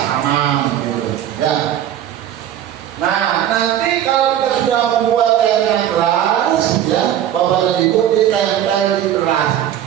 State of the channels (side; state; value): left; quieter; 11.0 dB